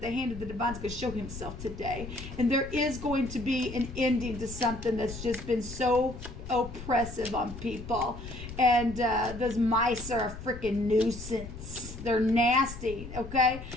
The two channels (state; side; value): noise; left; rumble, 11 dB below the sound